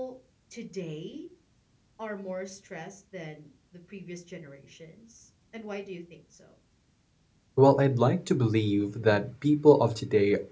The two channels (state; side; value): identical; both; correlation 1.00